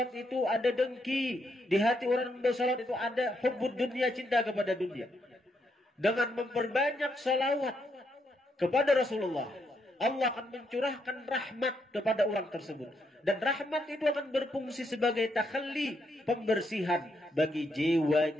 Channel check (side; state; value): both; normal; correlation 0.77